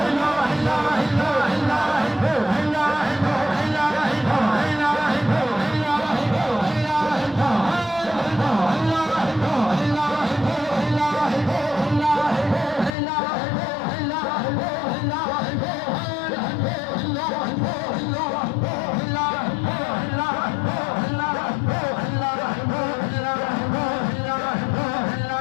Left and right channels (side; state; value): right; drops out; at 12.9 s